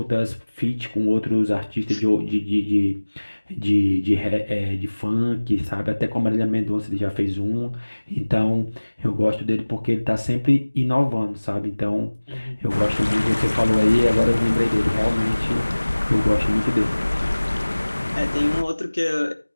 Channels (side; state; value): both; inverted; correlation -1.00